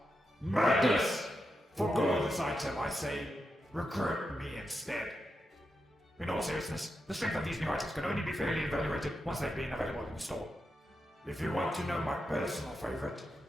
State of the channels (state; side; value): normal; both; correlation 0.87